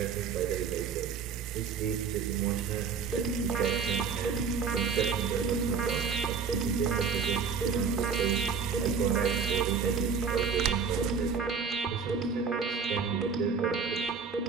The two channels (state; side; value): quieter; left; 5.9 dB